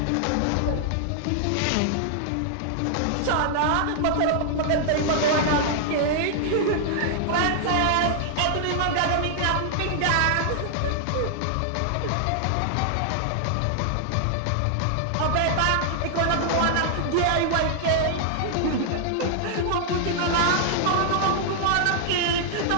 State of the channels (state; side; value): different; both; correlation -0.01